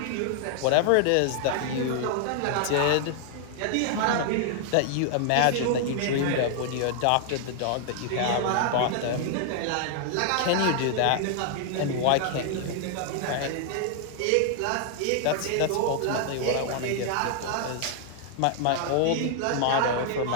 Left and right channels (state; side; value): different; both; correlation 0.00